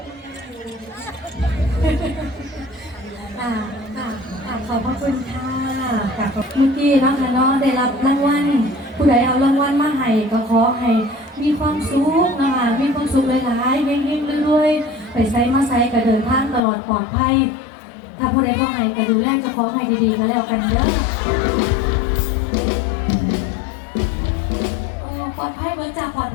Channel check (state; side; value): drops out; right; at 16.6 s